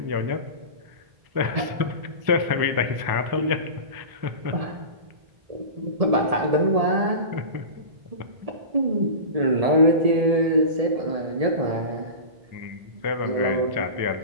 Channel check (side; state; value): left; late; 1.7 ms